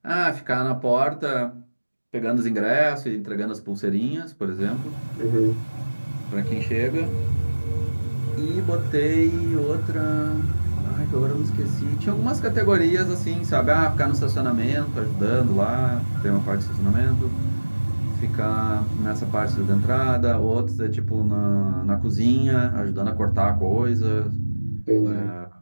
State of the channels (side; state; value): both; inverted; correlation -1.00